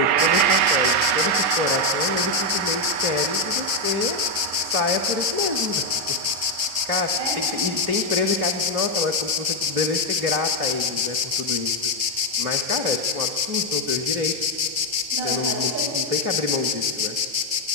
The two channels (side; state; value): left; late; 3.7 ms